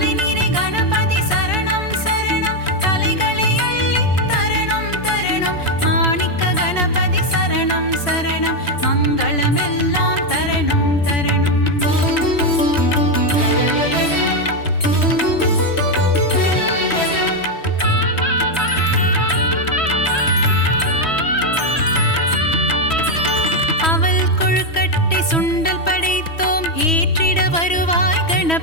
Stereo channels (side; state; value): right; late; 3.1 ms